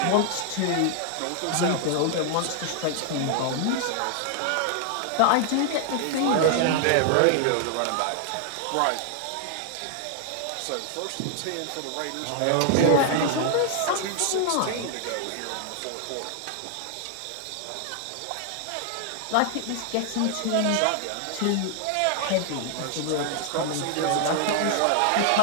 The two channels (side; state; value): both; different; correlation 0.00